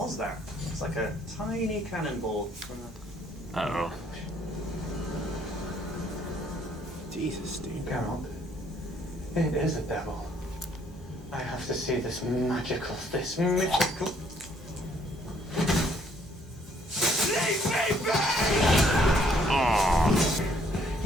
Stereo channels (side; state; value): both; normal; correlation 0.66